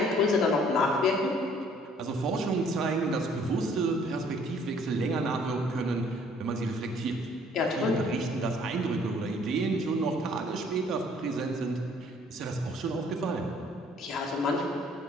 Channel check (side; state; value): both; normal; correlation 0.59